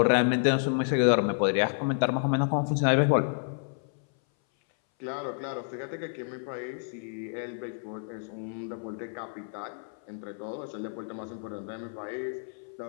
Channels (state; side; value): silent; right; 58 dB below the other